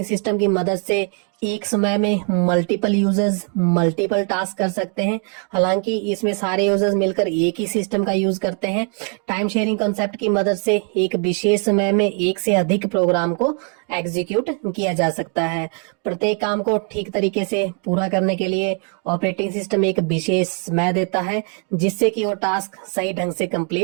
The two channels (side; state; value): left; quieter; 39.5 dB